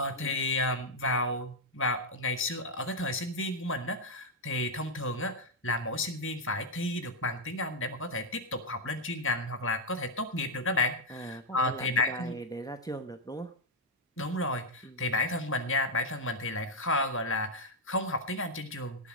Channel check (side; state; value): both; normal; correlation -0.01